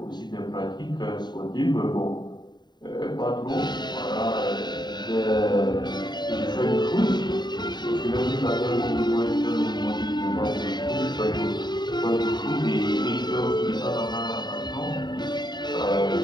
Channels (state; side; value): late; right; 0.21 ms